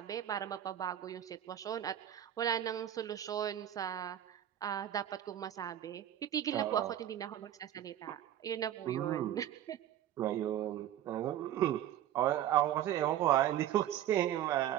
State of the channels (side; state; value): left; quieter; 11.4 dB